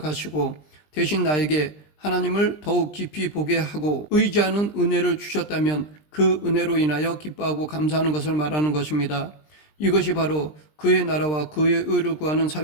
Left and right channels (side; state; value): right; late; 20 ms